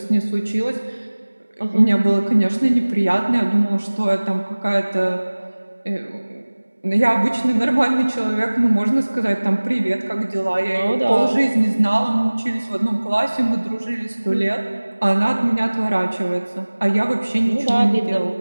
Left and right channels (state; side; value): inverted; both; correlation -1.00